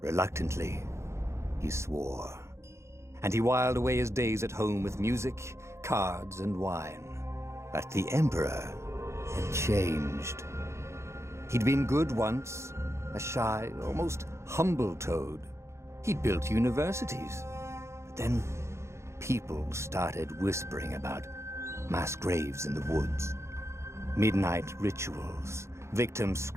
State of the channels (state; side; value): late; left; 0.13 ms